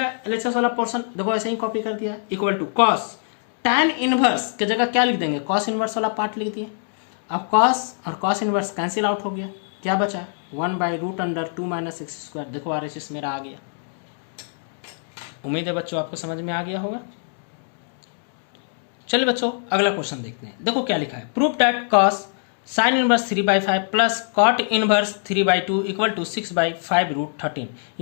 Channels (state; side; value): silent; right; digital silence